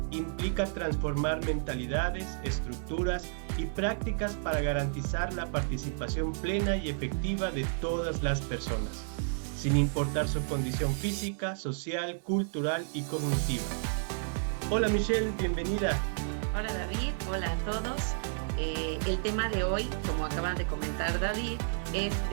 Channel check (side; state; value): left; silent; 57 dB below the other